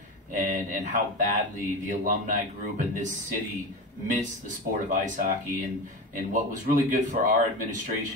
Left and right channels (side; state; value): both; normal; correlation 0.25